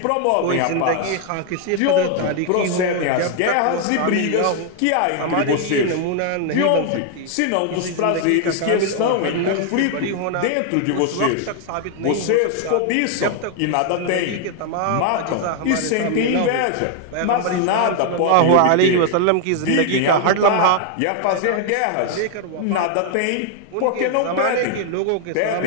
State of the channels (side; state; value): both; different; correlation 0.00